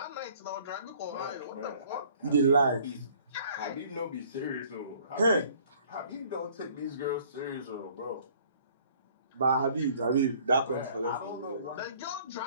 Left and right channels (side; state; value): both; inverted; correlation -0.56